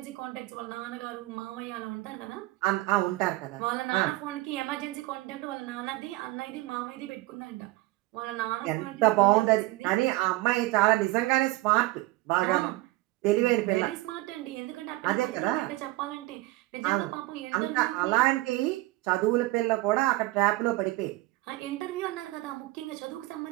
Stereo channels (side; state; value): left; quieter; 19.2 dB